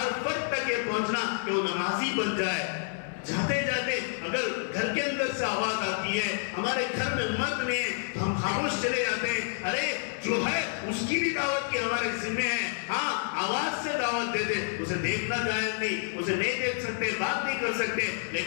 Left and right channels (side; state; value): right; silent; 59 dB below the other